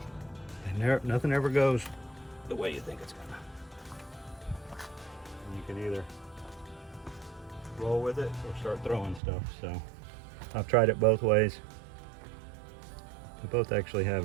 and nothing ever goes the way you think it's gonna. You can either roll with it or start throwing stuff. So I've tried it both ways. They both actually have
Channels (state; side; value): drops out; left; at 9.2 s